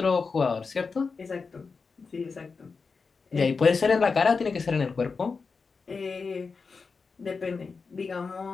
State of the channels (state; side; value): quieter; right; 4.8 dB